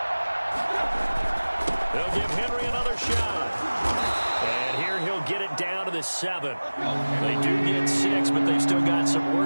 They'll give Henry another shot. And here he'll get it down to the 7. They do get 6, but they've still got some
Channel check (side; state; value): both; inverted; correlation -1.00